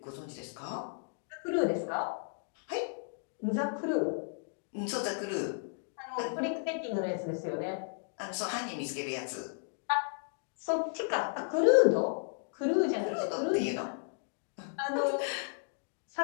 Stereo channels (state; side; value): silent; right; digital silence